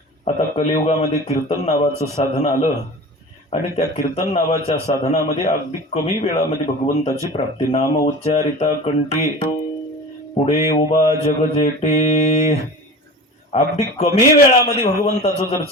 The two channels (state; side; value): normal; both; correlation 0.35